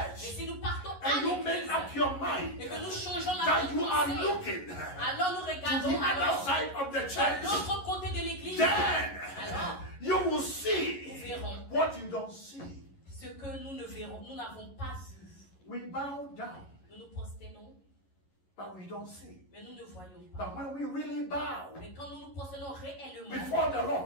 si nous partons à and you make l'église up your mind et que nous changeons la that you are pensée, looking alors nous to the regardons other alors side of the de church, l'autre côté de l'église. then Alors, you will nous see verrons what you don't see. ce que nous ne verrons, nous n'avons pas vu. We bow down, Nous nous prosternons, but we don't see. mais nous ne voyons pas. But when we really bow Mais quand nous nous prosternons réellement before the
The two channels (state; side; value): late; right; 11 ms